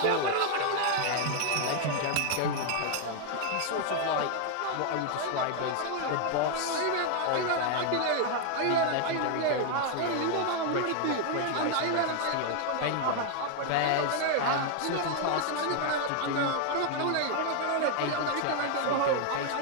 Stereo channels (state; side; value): different; both; correlation 0.00